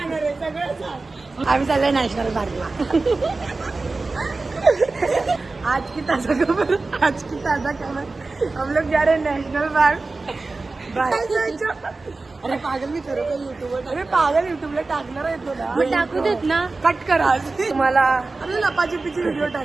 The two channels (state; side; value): quieter; left; 3.6 dB